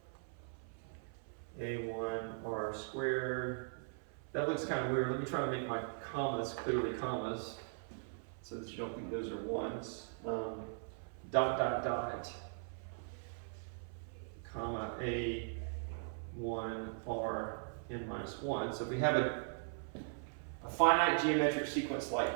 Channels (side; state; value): left; silent; 51 dB below the other